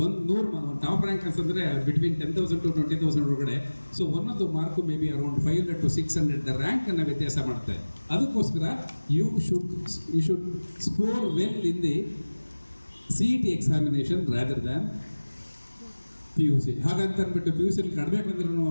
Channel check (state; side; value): inverted; both; correlation -1.00